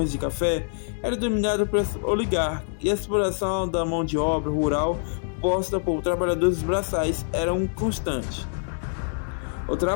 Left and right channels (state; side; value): silent; right; digital silence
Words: de café, eram dominadas pelos oligarcas, e a exploração da mão de obra rural posta por trabalhadores braçais era constante. O